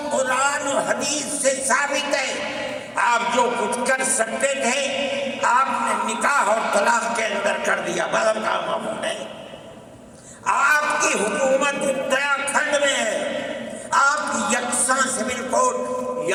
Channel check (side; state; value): both; identical; correlation 1.00